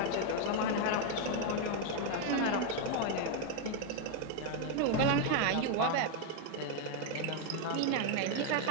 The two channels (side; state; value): both; different; correlation 0.01